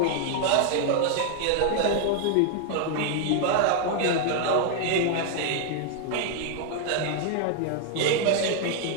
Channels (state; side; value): different; both; correlation 0.00